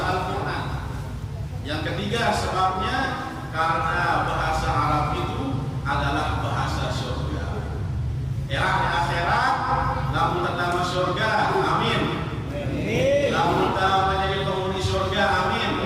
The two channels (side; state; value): both; identical; correlation 1.00